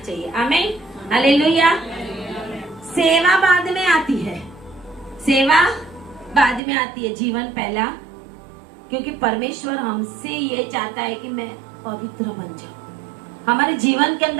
आमीन, हालेलुया। सेवा बाद में आती है, सेवा बाद में आती है, जीवन पहला। क्योंकि परमेश्वर हमसे ये चाहता है कि मैं पवित्र बन जाऊं। हमारे जीवन के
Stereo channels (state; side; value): drops out; left; at 6.6 s